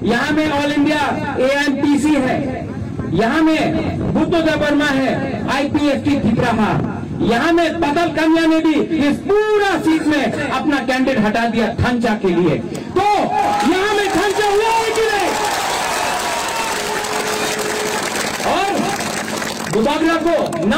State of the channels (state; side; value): identical; both; correlation 1.00